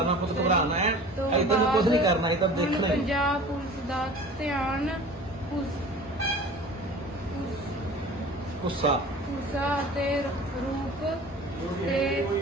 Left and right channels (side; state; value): both; normal; correlation 0.42